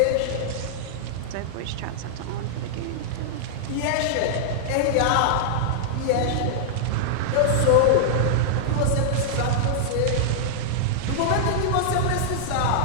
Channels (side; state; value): both; different; correlation -0.02